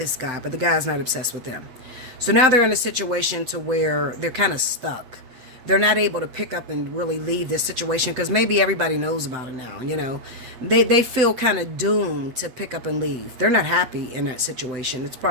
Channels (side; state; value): left; late; 8.3 ms